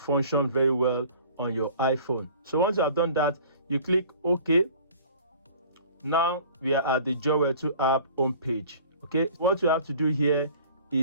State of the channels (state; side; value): inverted; both; correlation -0.47